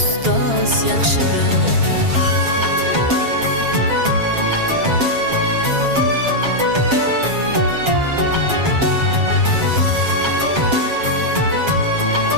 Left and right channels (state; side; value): late; left; 7.4 ms